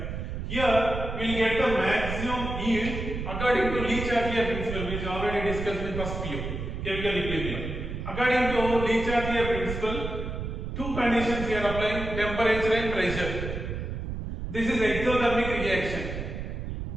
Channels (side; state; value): right; noise; rumble, 5 dB below the sound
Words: Here we will get the maximum yield according to Le-Chatelier principle, which already discussed in first PU, chemical equilibrium. According to Le-Chatelier principle, two conditions we are applying: temperature and pressure. This is exothermic reaction.